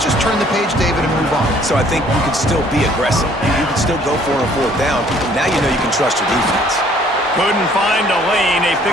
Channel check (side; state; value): both; normal; correlation 0.59